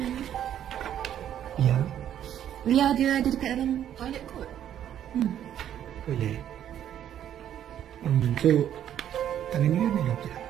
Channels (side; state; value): left; quieter; 10.5 dB